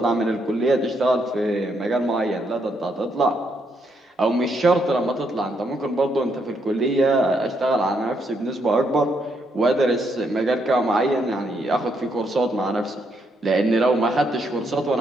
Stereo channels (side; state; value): both; normal; correlation 0.76